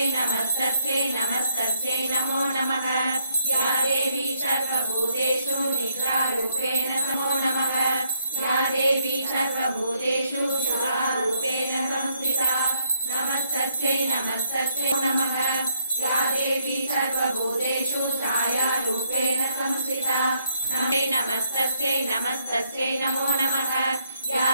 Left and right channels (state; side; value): inverted; both; correlation -0.73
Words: నమస్తస్యై నమస్తస్యై నమో నమః యా దేవీ సర్వభూతేషు నిద్రారూపేణ నమో నమః యా దేవీ సర్వభూతేషు శుభారూపేణ సంస్థితా నమస్తస్యై నమస్తస్యై నమః యా దేవీ సర్వభూతేషు ఛాయారూపేణ సంస్థితా నమస్తస్యై నమస్తస్యై నమో నమః యా